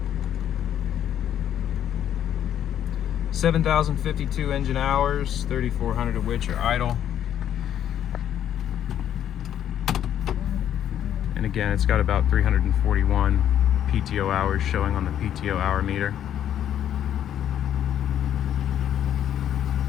$7,052 engine hours, 3,400 of which are idle. And again, it's got about 341 PTO hours showing on the PTO hour meter.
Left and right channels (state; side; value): quieter; right; 10.3 dB